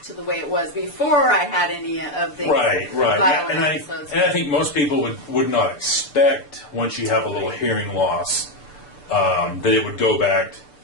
to the way it was before I had any of the Right. violent And episodes. I think most people would not expect, once you have a little hearing loss, that it would go back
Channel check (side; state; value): right; late; 6.8 ms